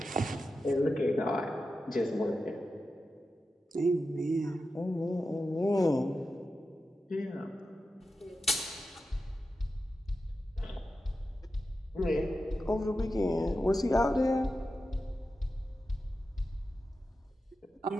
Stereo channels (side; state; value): both; normal; correlation 0.91